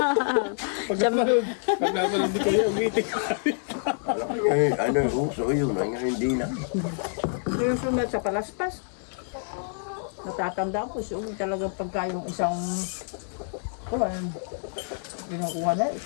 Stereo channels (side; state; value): right; silent; digital silence